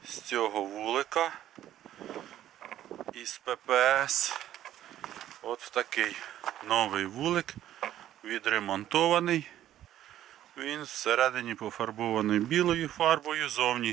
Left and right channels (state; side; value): quieter; left; 12.3 dB